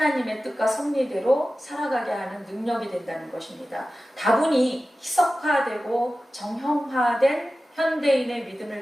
뜻과 섭리대로 살아가게 하는 능력이 된다는 것입니다. 다분히 희석화되고 정형화된 현대인의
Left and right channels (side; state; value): both; normal; correlation 0.95